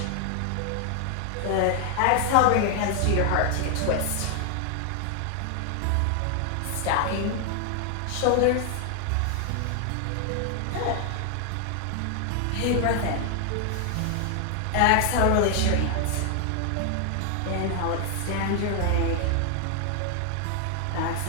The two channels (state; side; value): different; both; correlation 0.00